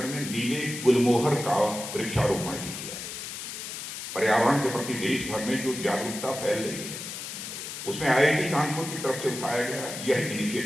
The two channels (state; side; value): noise; left; hiss, 8 dB below the sound